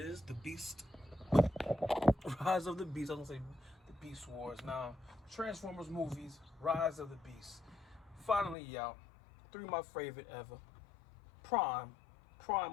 The Beast. Rise of the Beast. I was gonna say the Beast Wars. Now, Transformers movies, Rise of the Beast. Finally out. Three of my favorite ever. Prime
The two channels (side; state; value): right; drops out; at 8.6 s